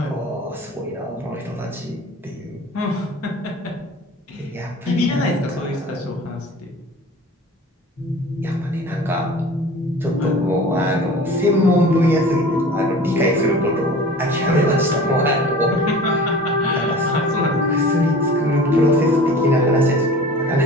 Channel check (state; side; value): normal; both; correlation 0.41